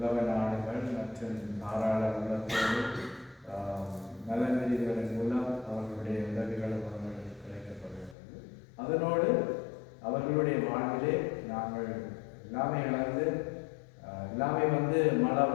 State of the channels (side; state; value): right; drops out; at 8.2 s